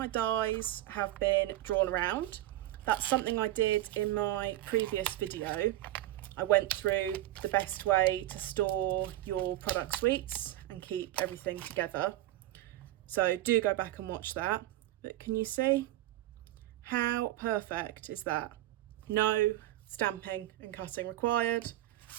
dies have been drawn around. That's something I did in my previous video. I went through the best way to store your product suites and keep everything together. So do go back and watch that. But can you see how perfect is that? No stamping and cutting required.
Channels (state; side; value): quieter; left; 15.3 dB